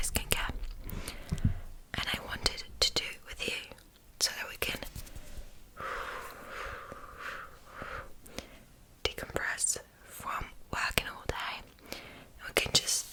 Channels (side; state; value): both; identical; correlation 1.00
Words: skincare, and I wanted to do it with you so that we can decompress from working all day. We can